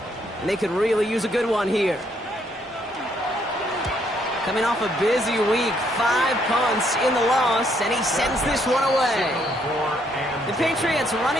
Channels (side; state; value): both; normal; correlation 0.71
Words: And they could really use a good one here. Coming off a busy week, 5 punts in the loss, and he sends this one away. The Patriots